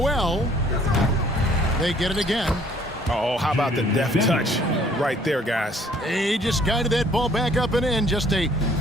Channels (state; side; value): normal; both; correlation 0.59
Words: They get it again. Oh, how about the deft touch right there, guys? He just guided that ball back up and in. Just a